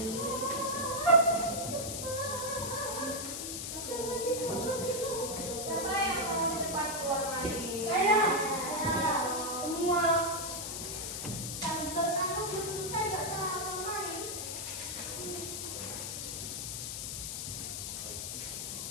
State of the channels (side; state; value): left; noise; hiss, 4 dB below the sound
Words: Siapa yang mau cepat keluar main? Saya. Semua. Kalau kamu belum bisa nggak salah main.